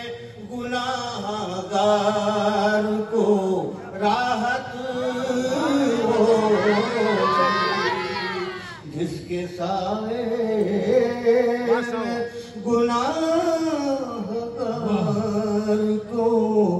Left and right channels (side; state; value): both; identical; correlation 1.00